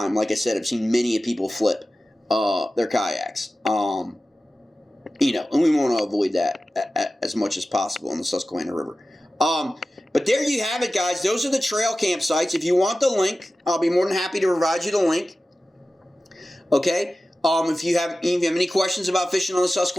like I said, I've seen many people flip their kayaks. You know, and we want to avoid that as much as possible in the Susquehanna River. But there you have it, guys. Those are the trail campsites. If you want the link, I'll be more than happy to provide you the link. Okay. If you have any questions about fishing on the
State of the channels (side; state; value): both; normal; correlation 0.95